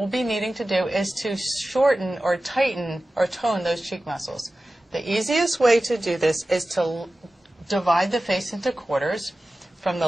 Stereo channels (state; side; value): normal; both; correlation 0.95